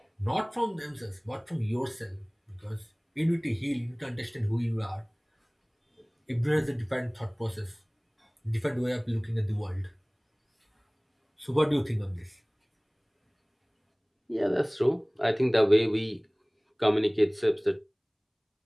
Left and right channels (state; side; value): identical; both; correlation 1.00